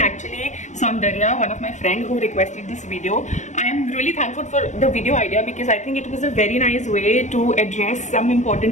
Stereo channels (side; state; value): right; late; 0.35 ms